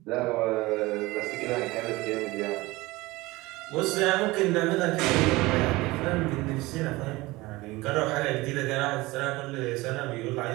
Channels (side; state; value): left; quieter; 20.8 dB